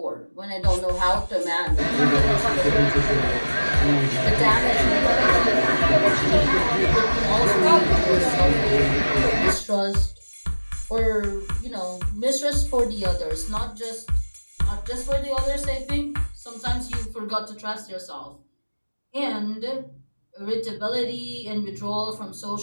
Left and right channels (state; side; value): inverted; both; correlation -1.00